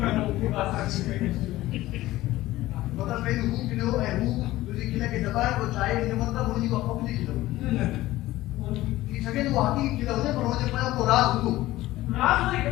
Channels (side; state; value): right; quieter; 16.6 dB